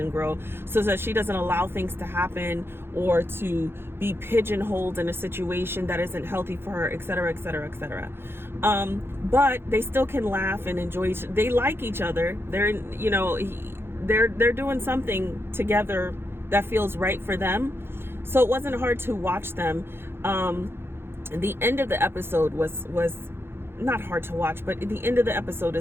grow so that she doesn't allow things to happen or to be pigeonholed in a situation that isn't healthy for her, etc., etc., etc. But they still can laugh and enjoy they like each other. They're, you know, they're doing something together that feels right for them. So it wasn't hard to watch them. The end of the episode was not hard to watch, but the end of the episode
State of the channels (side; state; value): left; late; 0.11 ms